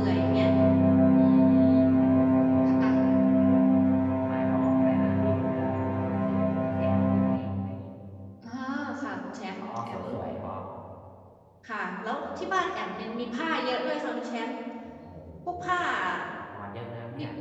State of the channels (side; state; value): both; identical; correlation 1.00